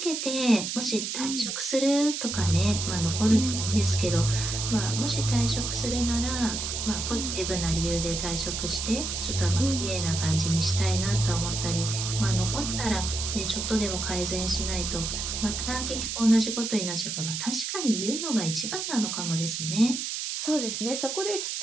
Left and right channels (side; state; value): right; noise; hiss, 3 dB below the sound